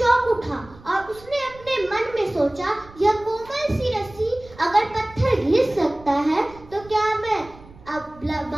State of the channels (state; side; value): noise; right; rumble, 22 dB below the sound